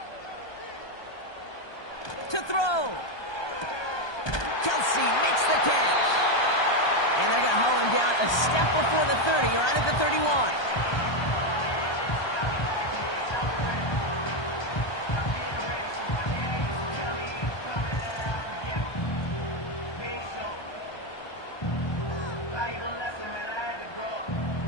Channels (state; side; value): late; right; 1.2 ms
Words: To throw. Kelsey makes the catch. And they're going to haul him down a step before the 30, right at the 31.